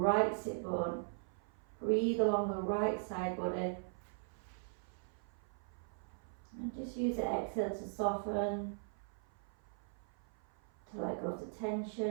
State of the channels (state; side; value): silent; left; 51 dB below the other